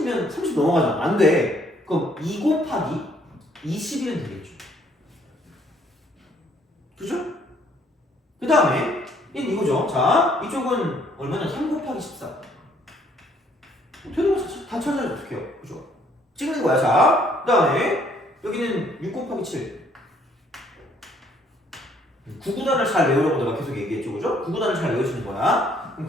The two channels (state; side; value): normal; both; correlation 0.65